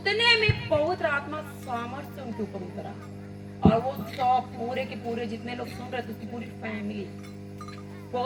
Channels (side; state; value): both; identical; correlation 1.00